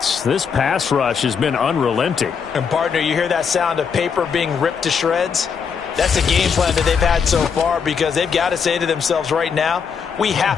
This pass rush has been unrelenting. And, partner, you hear that sound of paper being ripped to shreds? That's a game plan that they've had so far because they've got to say to themselves right now, we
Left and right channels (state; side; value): quieter; right; 6.4 dB